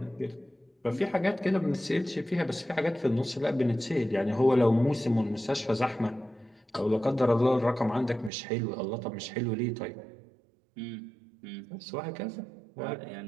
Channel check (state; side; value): drops out; left; at 8.3 s